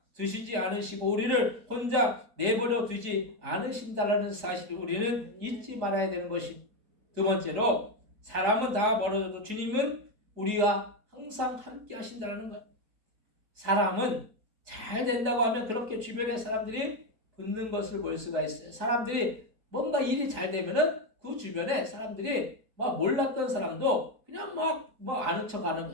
두시지 않으시고 우리를 혼자 내버려 두지 않으신다는 사실을 우리는 잊지 말아야 되는 것입니다. 두 번째로 사람은 다 멀어져도 주님은 우리와 항상 함께 하신다는 것. 사람은 잘 된다고 하면 그렇게 주변의 사람들이 붙는 것을 볼 수가 있어요. 사람들이 뭔가 일이 잘 되면은 그 주변에 사람들이 막 몰랐던 사람도 그냥 막 아는 척 하는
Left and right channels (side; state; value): left; late; 4.6 ms